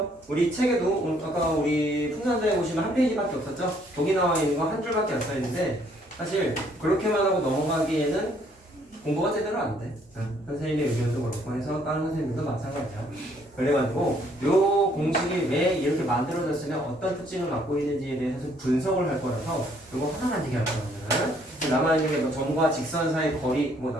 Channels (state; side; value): normal; both; correlation 0.65